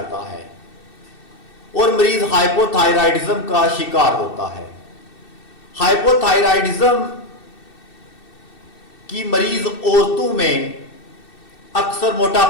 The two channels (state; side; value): late; right; 2.6 ms